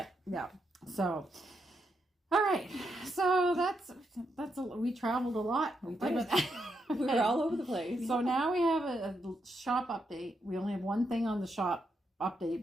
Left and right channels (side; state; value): both; normal; correlation 0.81